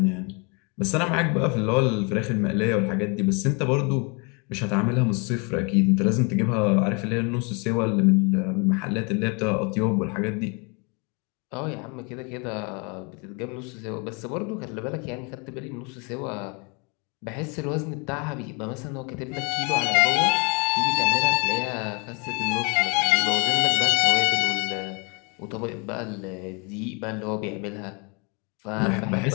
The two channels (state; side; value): quieter; right; 32.6 dB